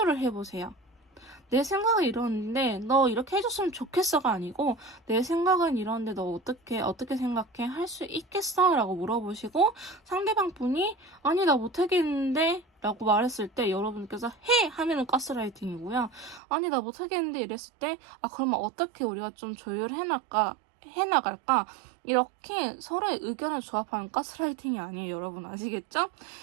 해보세요. 내 생각은 이러는데 너 이렇게 해줬으면 좋겠어가 아니고 내 생각은 이러는데 너 어떻게 생각해? 할 수 있겠어? 라고 물어보시고 상대방 분이 아니 나 못하겠는데 라고 말했을 때 여러분께서 해! 하면은 가스라이팅이고요. 아니 나 못하겠는데 이랬을 때 아 그러면 어떻게 우리가 좀 해나갈까? 이렇게 서로의 의견을 조합하는 가스라이팅이 아니에요. 여러분 아시겠죠?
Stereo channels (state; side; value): drops out; left; at 16.4 s